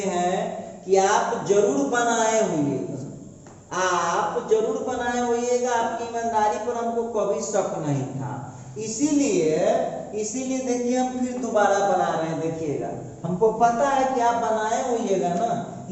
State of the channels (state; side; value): identical; both; correlation 1.00